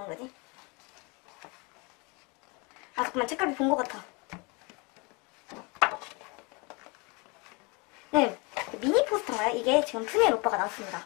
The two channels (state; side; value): quieter; right; 29.4 dB